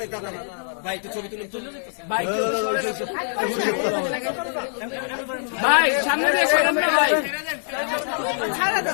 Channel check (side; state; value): right; silent; digital silence